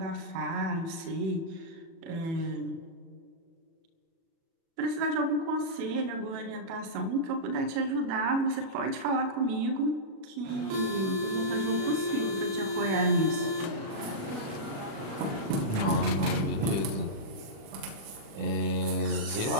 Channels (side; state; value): left; late; 36 ms